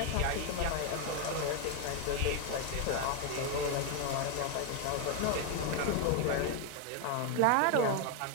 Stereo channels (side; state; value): both; different; correlation 0.01